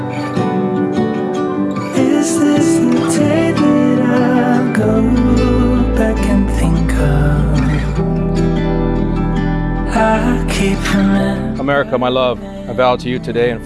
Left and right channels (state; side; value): identical; both; correlation 1.00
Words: Is this the day that I'll go back and think of? I keep remembering. America, my love, I vow to you today in